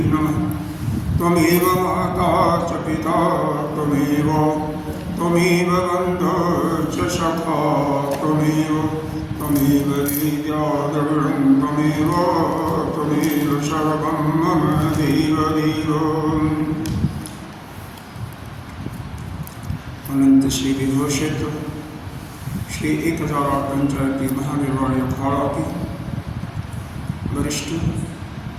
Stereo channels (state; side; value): identical; both; correlation 1.00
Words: नमः। त्वमेव माता च पिता त्वमेव बन्धुः च सखा त्वमेव विद्याद्रविणं त्वमेव सर्वं मम देवदेव। अनंत श्री विभूषित श्री 1008 पंचायती महानिर्वाणी अखाड़ा की वरिष्ठ